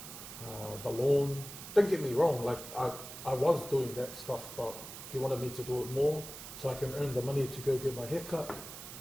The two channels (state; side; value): noise; right; hiss, 12 dB below the sound